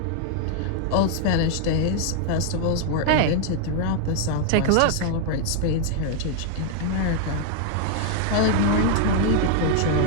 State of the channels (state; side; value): different; both; correlation 0.00